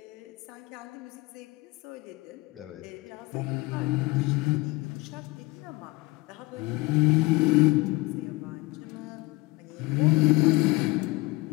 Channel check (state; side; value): quieter; right; 22.6 dB